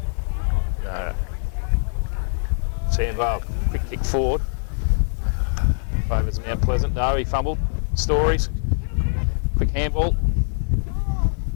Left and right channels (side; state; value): right; silent; 59 dB below the other